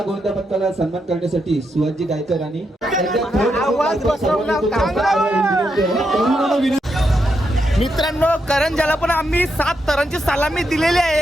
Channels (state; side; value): normal; both; correlation 0.82